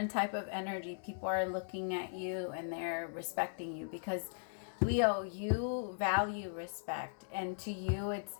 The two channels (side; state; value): right; silent; digital silence